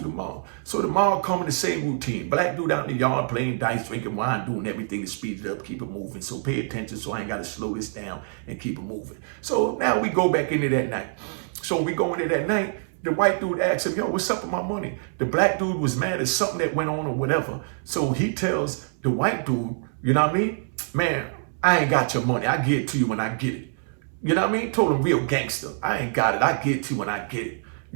So tomorrow come in the same routine. Black dude out in the yard playing dice, drinking wine, doing everything to speed it up, keep it moving. So pay attention so I ain't got to slow this down and keep it moving. So now we go back into that night. So we go into that night. The white dude asked him, yo, what's up with my money? The black dude was mad at something that went on or whatever. So he tells the white dude, you know what I mean? Man, I ain't got your money. I get it to you when I get it. You know what I mean? Told him real gangster. I ain't got it. I get it to you when I get it.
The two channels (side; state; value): left; silent; 61 dB below the other